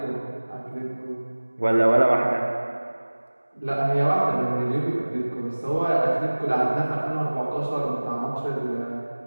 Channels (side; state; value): both; inverted; correlation -1.00